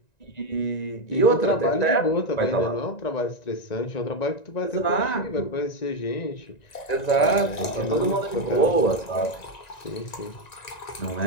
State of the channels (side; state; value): right; late; 1.9 ms